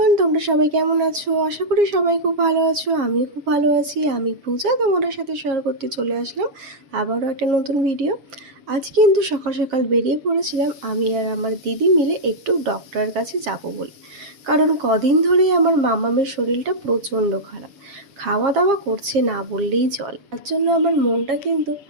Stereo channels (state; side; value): late; left; 7.4 ms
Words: তোমরা সবাই কেমন আছো? আশা করি সবাই খুব ভালো আছো। আমিও খুব ভালো আছি। আমি পূজা তোমাদের সাথে শেয়ার করতে চলে আসলাম আবারও একটা নতুন ভিডিও। আজ কিন্তু সকাল সকাল বেরিয়ে পড়েছিলাম আমি আর আমার দিদি মিলে একটু ডক্টরের কাছে যাব বলে। কারণ কদিন ধরেই আমার মামামের শরীরটা প্রচণ্ড খারাপ, খাওয়া দাওয়া করছে না বললেই চলে। তার জন্য আমার মনটা কিন্তু